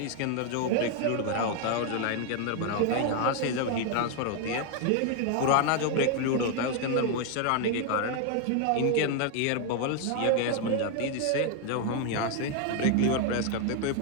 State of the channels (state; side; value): different; both; correlation 0.01